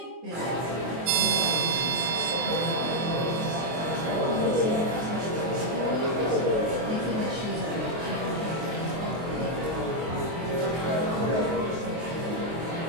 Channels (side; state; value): left; late; 23 ms